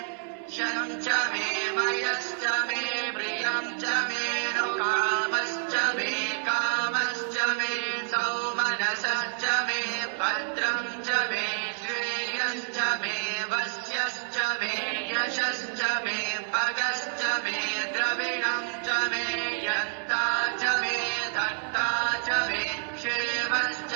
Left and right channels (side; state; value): left; silent; digital silence